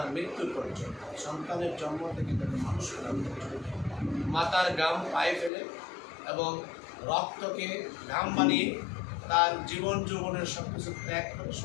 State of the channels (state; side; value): drops out; right; at 5.5 s